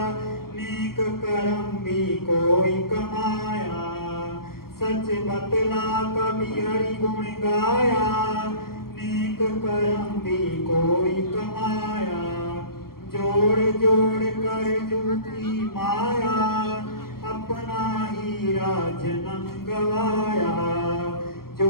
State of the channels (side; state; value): right; late; 0.93 ms